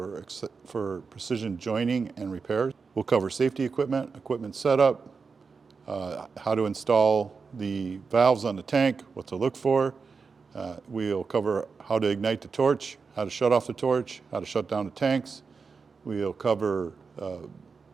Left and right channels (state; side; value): quieter; left; 5.0 dB